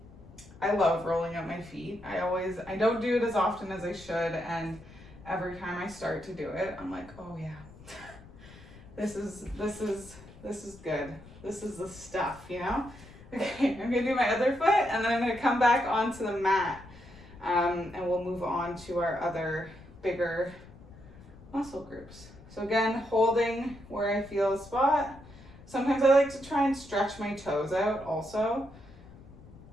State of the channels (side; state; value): left; noise; rumble, 20 dB below the sound